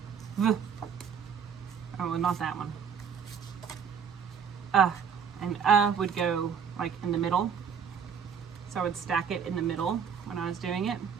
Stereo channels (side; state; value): left; quieter; 7.1 dB